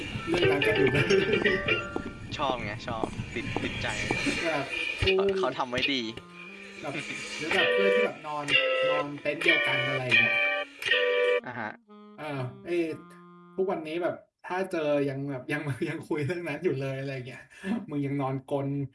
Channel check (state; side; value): identical; both; correlation 1.00